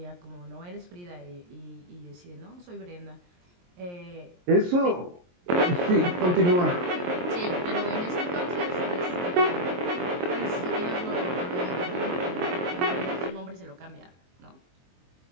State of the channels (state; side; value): late; left; 23 ms